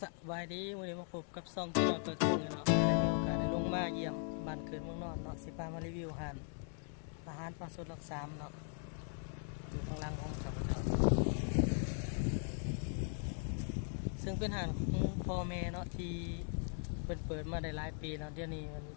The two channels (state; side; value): silent; right; 51 dB below the other